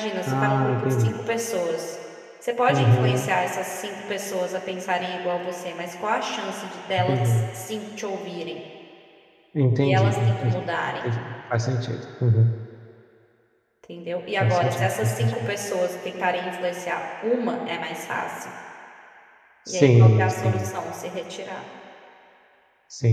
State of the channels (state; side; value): identical; both; correlation 1.00